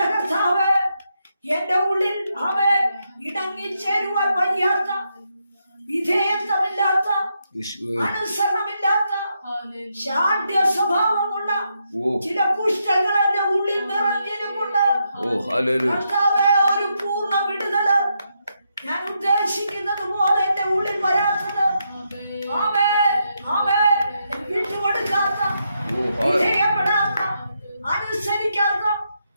കർത്താവ്, എന്റെ ഉള്ളിൽ ഇടങ്ങിച്ചേരുവാൻ വയ്യാത്ത, വിധേയത്വമില്ലാത്ത, അനുസരണമില്ലാത്ത, ശാഠ്യ സ്വഭാവമുള്ള ചില കുഷ്ഠങ്ങൾ എന്റെ ഉള്ളിൽ നിറഞ്ഞിരുമുണ്ട്. കർത്താവേ, ഒരു പൂർണ്ണ വിടുതല് ഞാൻ ഉദ്ദേശിക്കുന്നത് പോലെ എന്റെ ഉള്ളിൽ വരാത്തത്, വിട്ടുകൊടുക്കാത്ത, വിധേയപ്പെടാത്ത, അനുസരിക്കാത്ത,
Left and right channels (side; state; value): both; inverted; correlation -0.81